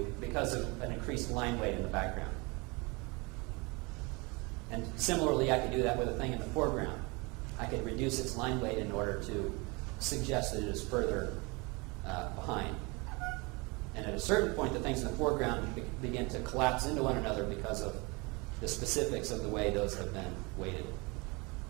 because of an increased line weight in the background. And similarly, I could do that with a thing in the foreground. I could reduce its line weight in order to suggest that it is further behind. And at a certain point, the things in the foreground begin to collapse into one another because of the specifics of the way those have been weighted.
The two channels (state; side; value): quieter; left; 27.4 dB